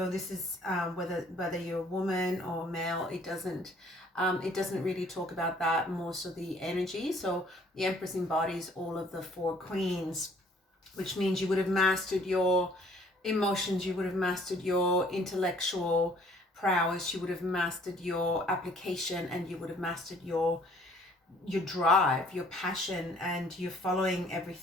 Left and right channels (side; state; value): both; normal; correlation 0.58